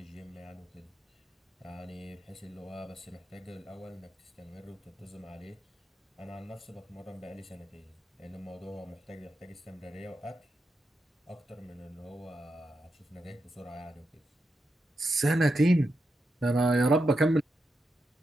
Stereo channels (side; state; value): both; normal; correlation 0.86